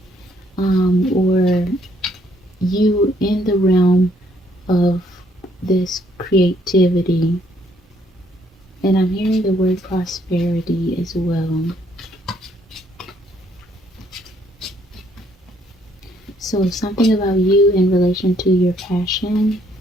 or you in the realm of this creativity. And I'm hearing the word prosperity as well. So something about you in relation to your passion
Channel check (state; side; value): normal; both; correlation 0.68